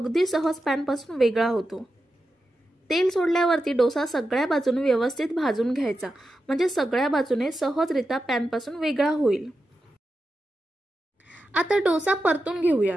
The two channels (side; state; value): both; normal; correlation 0.90